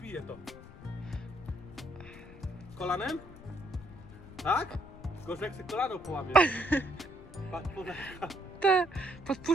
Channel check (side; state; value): left; noise; rumble, 17 dB below the sound